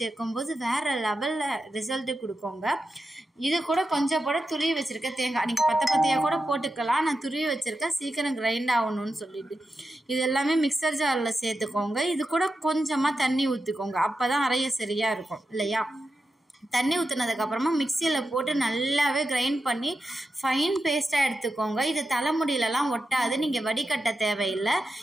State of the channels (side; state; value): both; normal; correlation 0.89